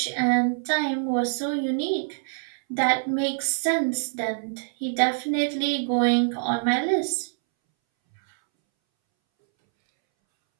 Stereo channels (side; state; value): left; silent; 62 dB below the other